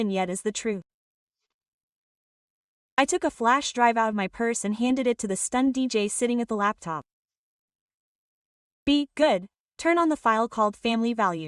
yet is the truth. I took a flash drive out of my purse and handed it to the stunned DJ sitting at the laptop. Be good, turn on the file called Family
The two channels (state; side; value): identical; both; correlation 1.00